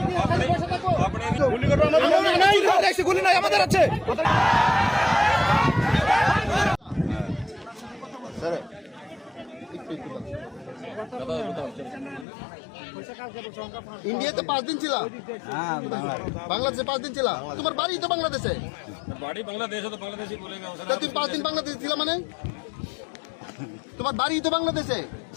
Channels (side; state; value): right; drops out; at 12.2 s